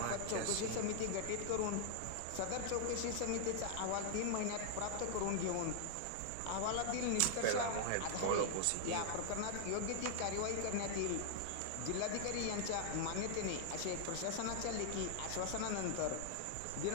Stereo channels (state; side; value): different; both; correlation -0.01